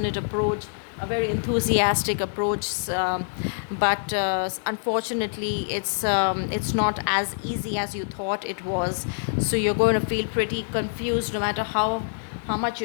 approach, a very enthusiastic approach, but unfortunately it's not as easy as you thought it was. So you're going to feel pretty confused no matter how much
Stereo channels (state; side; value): silent; right; digital silence